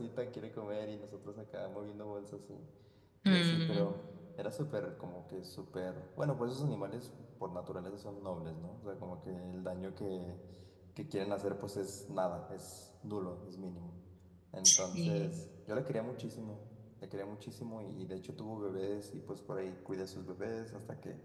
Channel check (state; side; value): identical; both; correlation 1.00